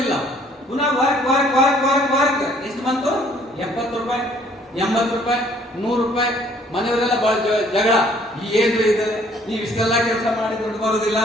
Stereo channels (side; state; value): both; normal; correlation 0.60